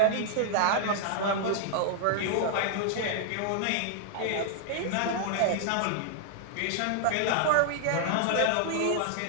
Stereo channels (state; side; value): different; both; correlation -0.01